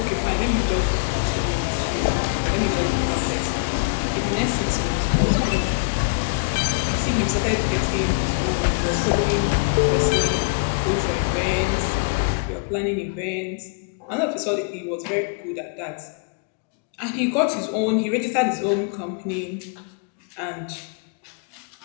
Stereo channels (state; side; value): quieter; right; 34.6 dB